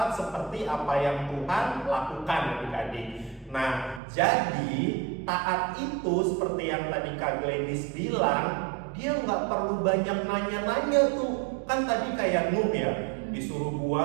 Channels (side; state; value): left; drops out; at 4.0 s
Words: seperti apa yang Tuhan lakukan adik-adik. Nah, jadi taat itu seperti yang tadi Kak Gladys bilang, dia nggak perlu banyak nanya-nanya tuh. Kan tadi kayak Nuh ya, disuruh